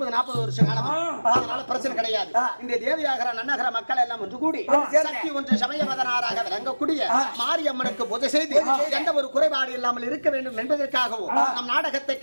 வருஷம் காலமா, அதனால பிரச்சனை கிடையாது. இந்த தேவியாகர நன்னகர மக்கள் எல்லாம் ஒன்று கூடி சக்தி ஒன்று சமயவதனாராக விளங்கக்கூடிய மாரியம்மனுக்கு பூஜை செய்து எந்த ஒரு குறைபாடு இல்லாமல் இருக்க வேண்டும் என்பதற்காகவும் நம் நாடகத்தை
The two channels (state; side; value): inverted; both; correlation -1.00